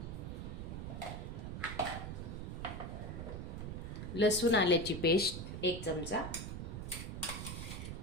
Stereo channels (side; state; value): right; noise; rumble, 6 dB below the sound